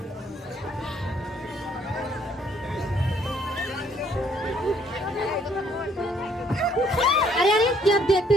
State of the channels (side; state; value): both; normal; correlation 0.65